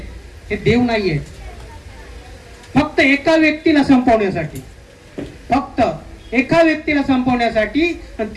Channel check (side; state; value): both; identical; correlation 1.00